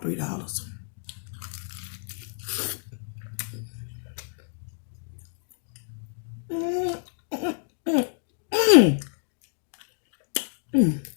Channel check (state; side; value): silent; right; digital silence